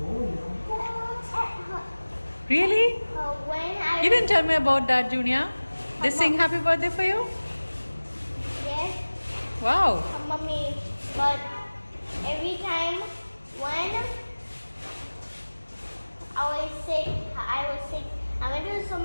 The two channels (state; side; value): inverted; both; correlation -1.00